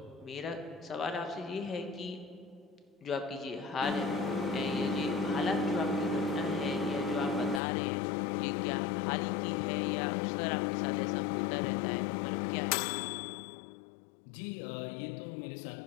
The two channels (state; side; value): drops out; right; at 7.6 s